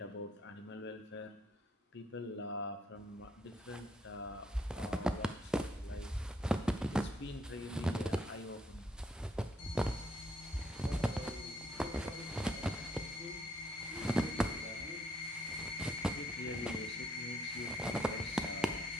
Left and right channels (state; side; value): normal; both; correlation 0.71